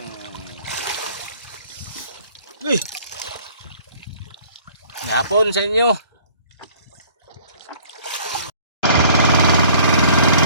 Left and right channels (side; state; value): both; inverted; correlation -0.54